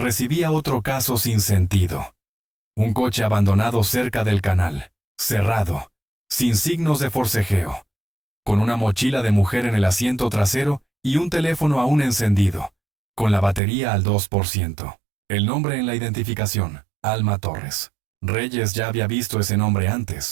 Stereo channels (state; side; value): drops out; left; at 13.6 s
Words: otro caso sin sentido. Un coche abandonado cerca del canal, cerrado, sin signos de forcejeo, con una mochila de mujer en el asiento trasero y un teléfono aún encendido, con la batería al 2%. El nombre en la identificación, Alma Torres. Reyes ya había visto ese nombre